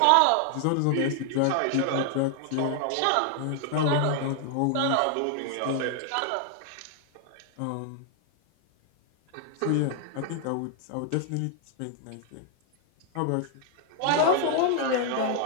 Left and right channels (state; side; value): different; both; correlation 0.00